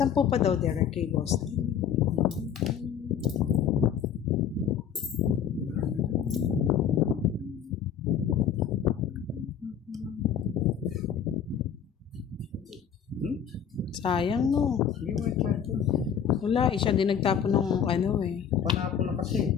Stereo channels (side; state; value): right; quieter; 8.1 dB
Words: pa daw, Derek, kay boss. Sayang, no? Hindi mo ito. Wala, siya din nagtapon ng ano eh. Panapo na kasi.